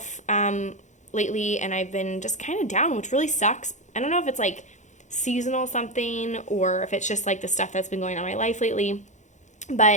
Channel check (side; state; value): right; late; 0.35 ms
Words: lately, and I've been just kind of down, which really sucks. I don't know if it's like seasonal something or if it's just like the stuff that's been going on in my life lately.